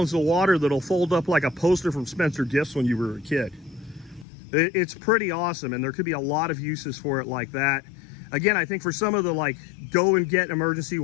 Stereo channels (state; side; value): drops out; right; at 4.2 s